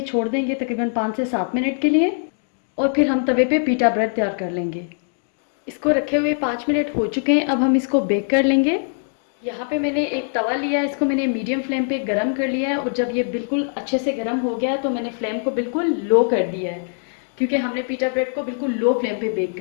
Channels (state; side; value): silent; right; digital silence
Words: छोड़ देंगे तकरीबन 5 से 7 मिनट के लिए। और फिर हम तवे पे पीटा ब्रेड तैयार कर लेंगे। इसको रखे हुए 5 मिनट हो चुके हैं। अब हम इसको बेक कर लेंगे। यहाँ पे मैंने एक तवा लिया है, इसको मैंने मीडियम फ्लेम पे गरम कर लिया है। और जब ये बिल्कुल अच्छे से गरम हो गया है तो मैंने फ्लेम को बिल्कुल लो कर दिया है, क्योंकि हमने पीटा ब्रेड को बिल्कुल लो फ्लेम पे बेक